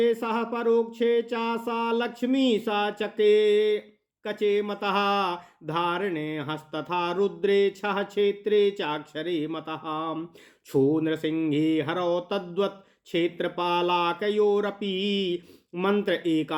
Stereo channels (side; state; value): both; identical; correlation 1.00